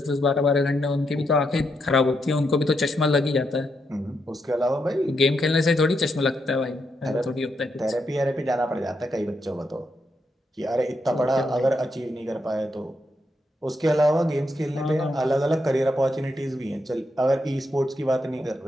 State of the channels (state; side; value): normal; both; correlation 0.81